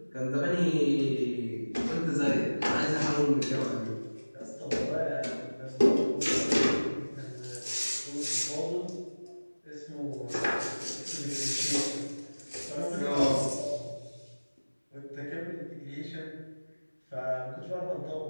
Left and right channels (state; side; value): inverted; both; correlation -1.00